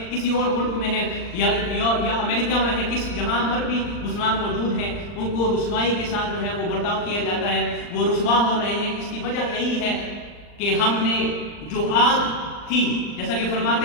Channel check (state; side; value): late; right; 39 ms